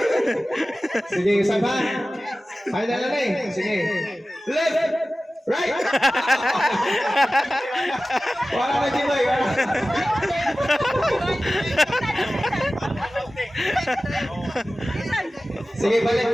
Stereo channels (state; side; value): normal; both; correlation 0.96